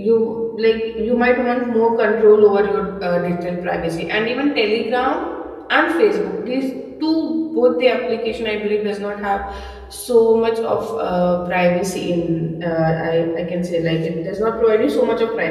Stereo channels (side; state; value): both; identical; correlation 1.00